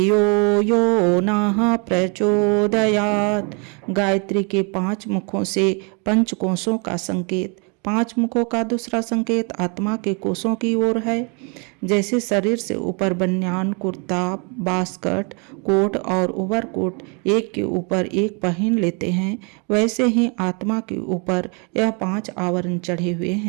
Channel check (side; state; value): left; quieter; 34.4 dB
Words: यो नः प्रचोदयात्। गायत्री के 5 मुखों से पंचकोशों का संकेत। 5 मुखों का दूसरा संकेत आत्मा के कोशों की ओर है। जैसे शरीर से ऊपर बनियान, कुर्ता, बास्कट, कोट और ओवरकोट एक के ऊपर एक पहन लेते हैं, वैसे ही आत्मा के ऊपर यह 5 आवरण चढ़े हुए